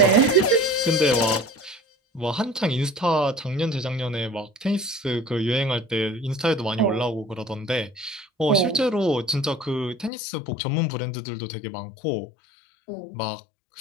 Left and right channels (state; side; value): drops out; right; at 10.1 s